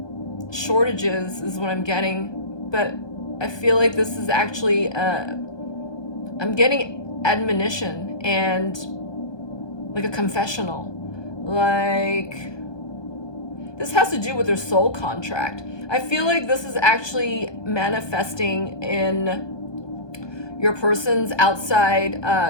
shortages, is what I'm getting, but I feel like this is actually I'm getting admonition and like a confessional. Like, this has to do with their soul contract. I feel like this is actually manifesting in your person's outside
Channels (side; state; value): right; late; 1.2 ms